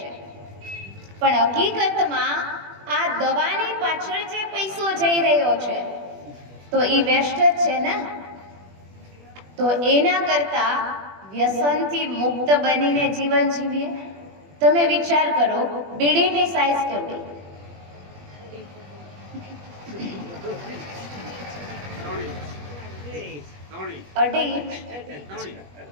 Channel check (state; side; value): late; left; 21 ms